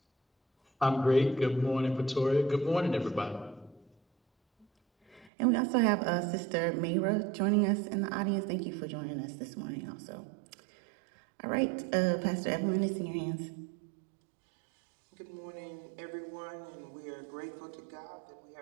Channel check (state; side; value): drops out; left; at 5.3 s